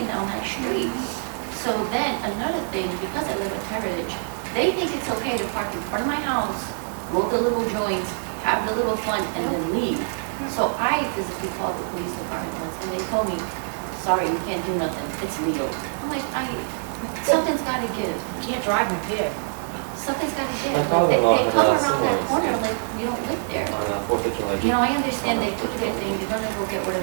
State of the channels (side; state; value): left; silent; 56 dB below the other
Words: down that street. So then, another thing, because I live at Heritage, they think it's okay to park in front of my house, roll the little joints, have the little fun, and then leave. So I physically called the police department once, and they told me, sorry, we can't do nothing, it's legal. I'm like, something's gotta give, You can't drive impaired. something's gotta give. My Like, father-in-law they had come a around similar that corner experience. like you don't live there. On 4th of July. You know, I understand they do their thing, they're gonna go get